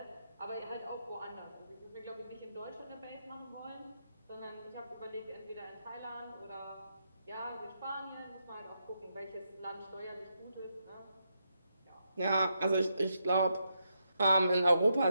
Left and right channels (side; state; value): both; inverted; correlation -0.82